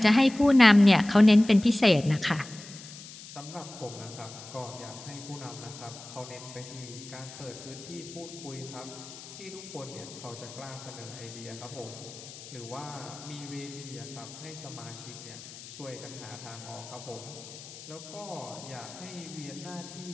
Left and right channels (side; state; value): left; noise; hiss, 15 dB below the sound